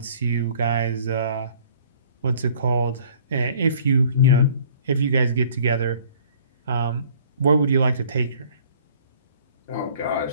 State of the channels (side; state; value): both; inverted; correlation -0.54